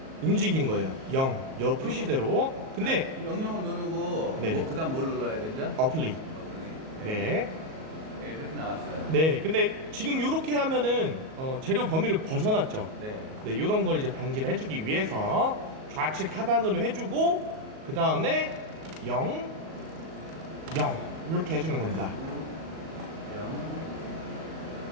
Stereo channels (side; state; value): left; late; 38 ms